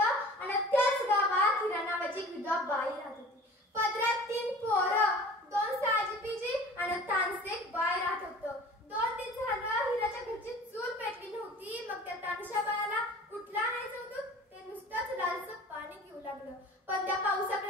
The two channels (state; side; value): normal; both; correlation 0.43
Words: आणि त्याच गावात हिरा नावाची विधवा बाई राहत होती. पदरात 3 पोरं, 2 साजीपीजी आणि तानसे बाय राहत होतं. 2 दिन झालं हिराच्या घरची चूल पेटली नव्हती. मग त्या तानशा बाळाला कुठला आणायचं होतं ते नुसतंच लालचं पाणी घेऊ लागलं. पण त्या